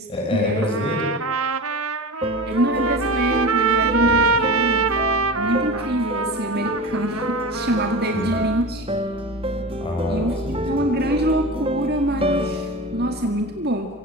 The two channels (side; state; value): both; normal; correlation 0.31